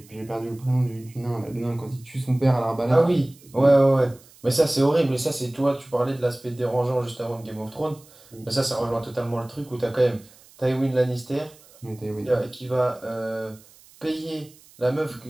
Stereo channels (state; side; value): noise; right; hiss, 25 dB below the sound